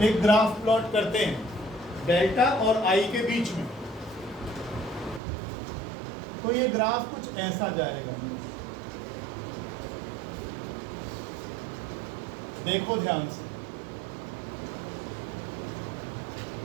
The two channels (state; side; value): drops out; left; at 5.2 s